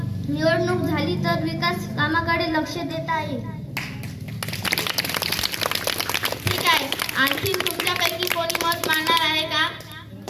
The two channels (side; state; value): both; identical; correlation 1.00